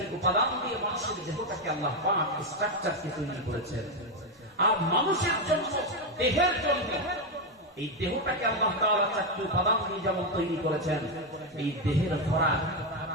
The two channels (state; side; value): normal; both; correlation 0.06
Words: উপাদান দিয়ে মানুষের দেহটাকে আল্লাহ পাক স্ট্রাকচারকে তৈরি করেছেন। আর মানুষের জন্য, দেহের জন্য এই দেহটাকে আল্লাহ তাআলা 4টি উপাদান দিয়ে যেমন তৈরি করেছেন, এই দেহের খোরাক